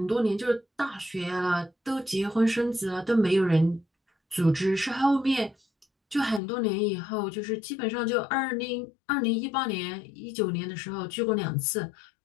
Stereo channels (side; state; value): right; drops out; at 6.4 s